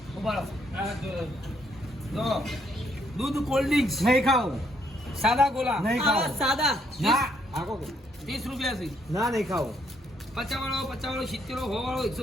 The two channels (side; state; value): both; normal; correlation 0.71